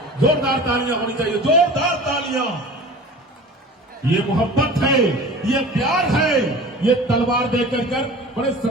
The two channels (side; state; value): both; normal; correlation 0.39